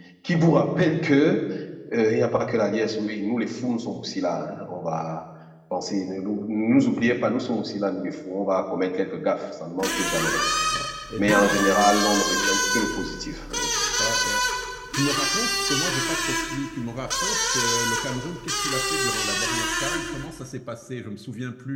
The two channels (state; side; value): identical; both; correlation 1.00